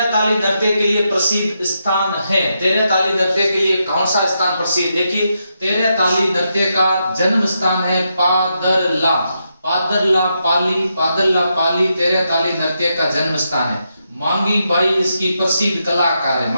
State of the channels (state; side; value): inverted; both; correlation -0.83